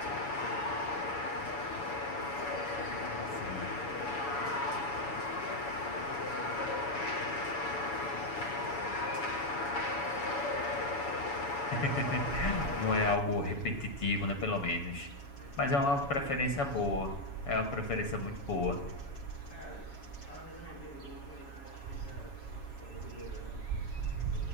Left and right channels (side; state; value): right; late; 7.2 ms